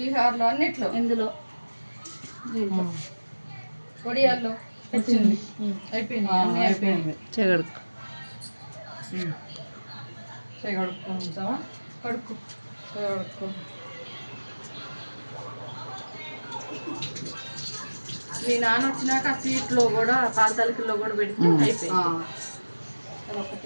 అన్నిట్లో ఇందులో పొడియాల్లో వచ్చింది అయిపోయింది అయిపోయింది చెగడుకు కడుక్కుంటావా కడుక్కు కడుక్కో మీ నాన్న వచ్చినాక ఆ సీట్లో కూడా పాల తలకిలో కూడా పెడితే అయిపోయింది.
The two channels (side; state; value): both; inverted; correlation -1.00